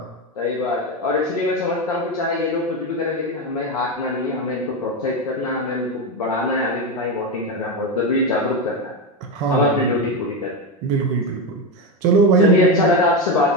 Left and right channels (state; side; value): normal; both; correlation 0.13